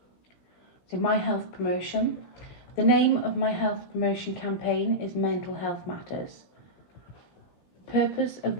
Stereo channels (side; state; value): right; late; 16 ms